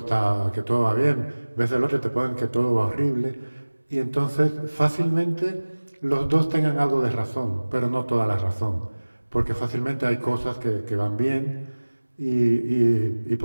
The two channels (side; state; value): both; inverted; correlation -1.00